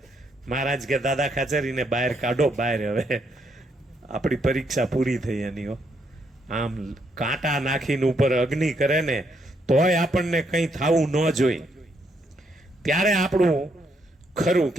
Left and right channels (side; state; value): both; normal; correlation 0.75